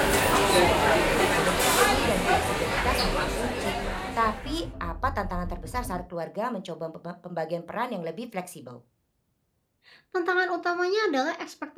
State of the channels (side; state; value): both; identical; correlation 1.00